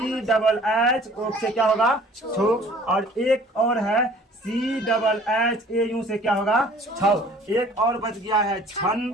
डबल एच ओ से क्या होगा? छो, और एक और है C double H A U से क्या होगा? छौ। एक और बच गया है छन,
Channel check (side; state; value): both; normal; correlation 0.51